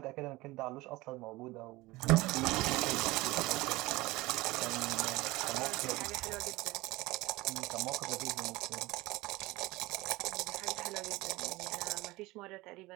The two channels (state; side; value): quieter; left; 20.4 dB